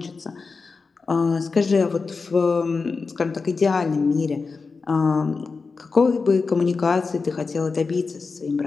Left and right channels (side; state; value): right; quieter; 4.5 dB